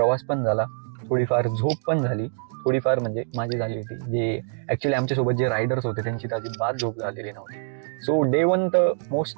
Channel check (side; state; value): left; silent; digital silence